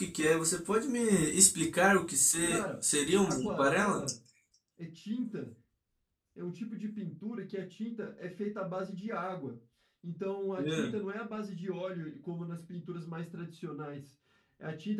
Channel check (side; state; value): both; identical; correlation 1.00